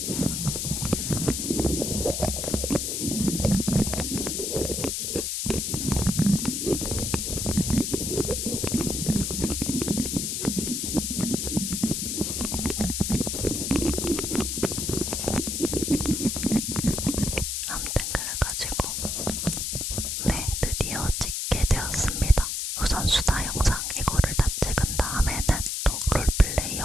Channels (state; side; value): noise; left; hiss, 1 dB below the sound